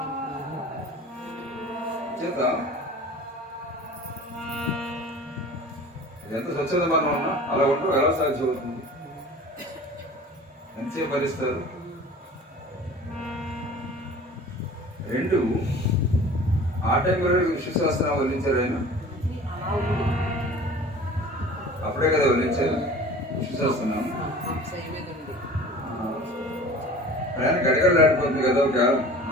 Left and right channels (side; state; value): both; normal; correlation 0.42